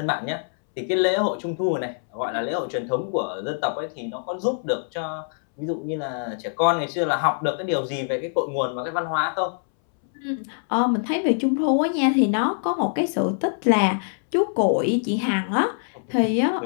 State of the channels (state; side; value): silent; right; 63 dB below the other